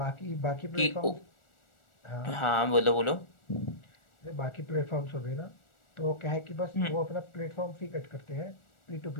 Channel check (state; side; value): late; right; 1.4 ms